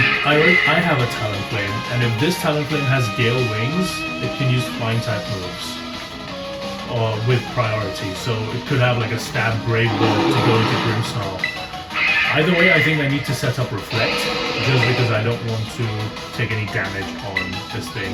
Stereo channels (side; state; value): both; identical; correlation 1.00